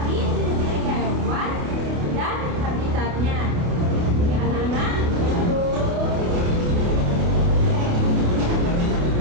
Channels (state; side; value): late; left; 28 ms